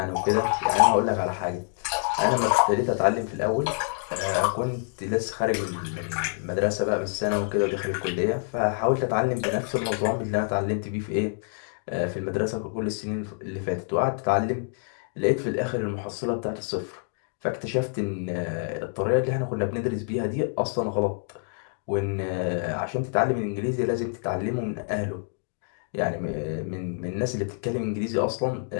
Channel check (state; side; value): silent; right; 60 dB below the other